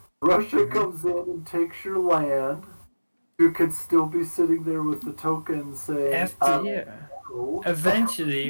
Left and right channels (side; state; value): both; inverted; correlation -1.00